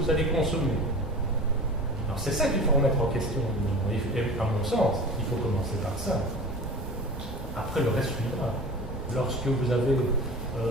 allez consommer. Alors c'est ça qu'il faut remettre en question. Et à mon sens, il faut commencer par ça. Après le reste suivra. Lorsque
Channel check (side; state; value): both; normal; correlation 0.36